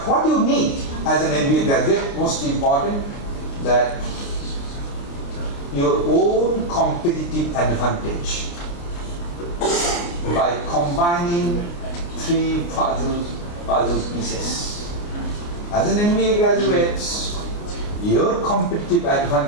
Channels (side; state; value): right; late; 29 ms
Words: what you need as an MBA graduate, most important, that your own competitive advantage by combining three puzzle pieces. As an MBA graduate, your competitive